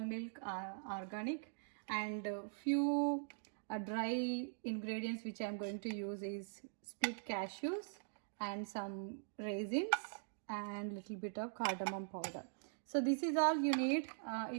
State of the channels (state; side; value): silent; left; digital silence